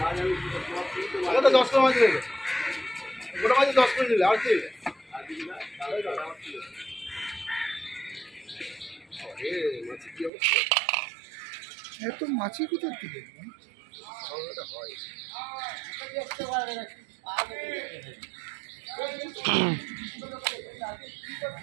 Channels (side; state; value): left; drops out; at 10.3 s